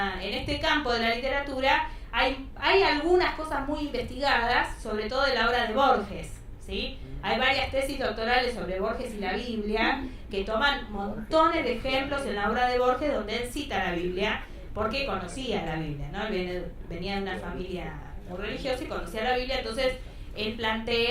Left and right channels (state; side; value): identical; both; correlation 1.00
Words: campo de la literatura hay algunas cosas muy investigadas, sobre todo de la obra de Borges, ¿sí? Hay varias tesis doctorales sobre Borges y la Biblia que toman montones de ejemplos en la obra de Borges donde él cita la Biblia porque conocía la Biblia, ¿no? Él venía de una familia muy religiosa y conocía la Biblia, entonces él